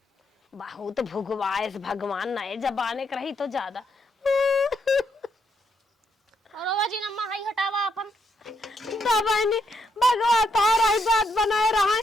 बहुत भुगवाइस भगवान नए जबाने के रही तो ज्यादा। और बाबा जी नम्मा हाई हटावा अपन बहनी भगवान तारा ही बात बनाए रहा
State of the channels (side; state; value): both; normal; correlation 0.77